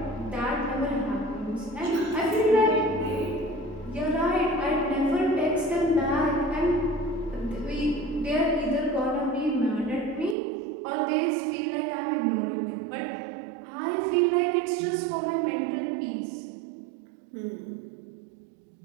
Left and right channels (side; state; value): left; drops out; at 10.4 s